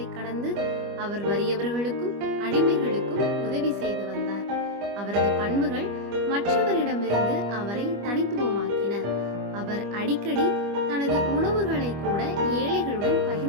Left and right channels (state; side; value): late; left; 25 ms